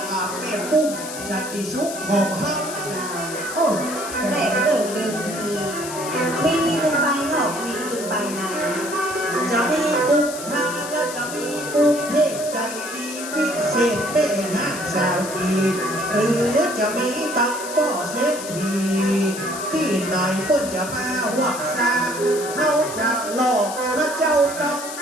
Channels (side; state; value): left; noise; hiss, 10 dB below the sound